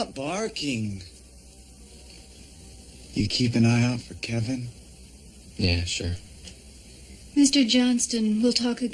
barking. You keep an eye out for Kevin? Yeah, sure. Mr. Johnston, we'll talk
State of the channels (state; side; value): identical; both; correlation 1.00